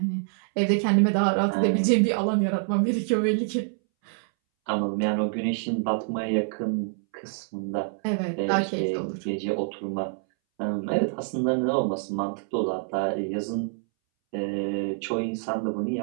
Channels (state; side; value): silent; left; 61 dB below the other